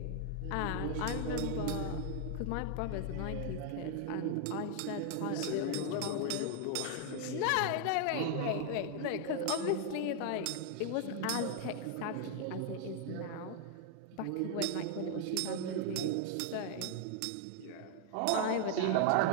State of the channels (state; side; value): different; both; correlation 0.00